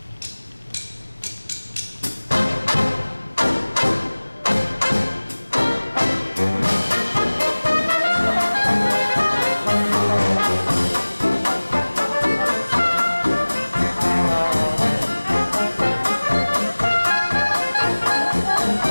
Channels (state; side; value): inverted; both; correlation -1.00